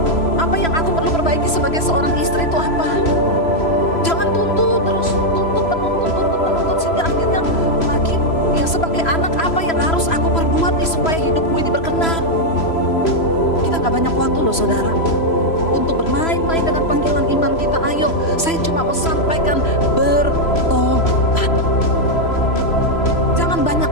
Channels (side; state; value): right; late; 3.0 ms